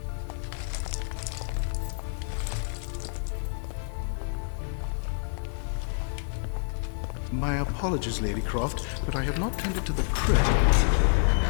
My apologies, Lady Croft, but I have not tended to the crypt.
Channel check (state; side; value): silent; right; digital silence